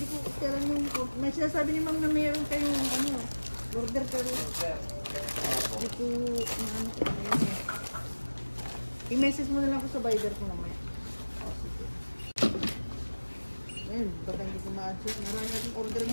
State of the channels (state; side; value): inverted; both; correlation -1.00